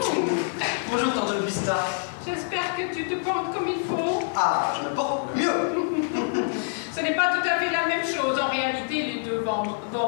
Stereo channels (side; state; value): right; silent; digital silence